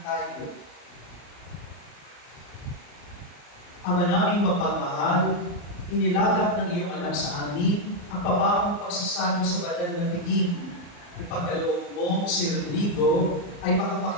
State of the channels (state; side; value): late; right; 34 ms